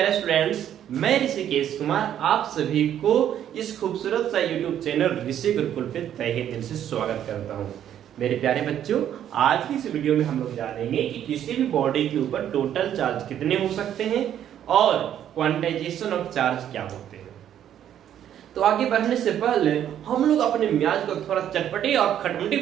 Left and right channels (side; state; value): left; quieter; 10.4 dB